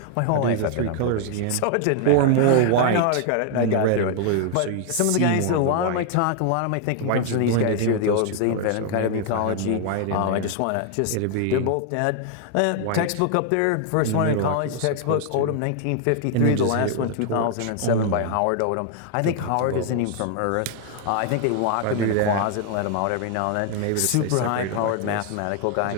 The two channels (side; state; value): both; different; correlation 0.00